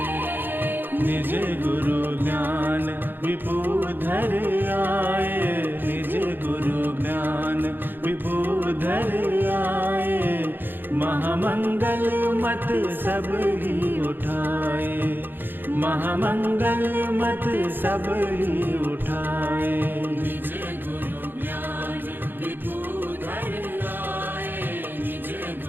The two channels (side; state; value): left; late; 0.095 ms